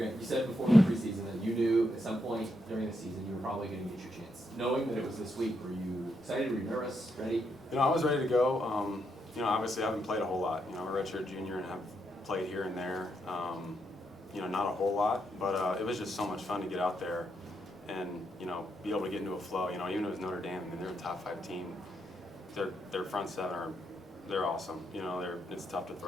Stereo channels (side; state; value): both; normal; correlation 0.80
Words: you said before the preseason that you knew at some point during the season you were probably going to get your chance. Knowing that it was this week, were you excited? Were you nervous? Ready? I was ready to go. Obviously I haven't played a whole lot. I'm a redshirt junior and have played here and there. Not a whole lot, but it was just so much fun to get out there and, be able to get into a flow. Even if it was Notre Dame, they're a top 5 team. Their front seven they're awesome. It's tough to